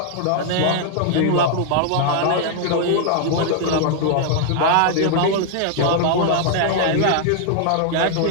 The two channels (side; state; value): both; different; correlation 0.00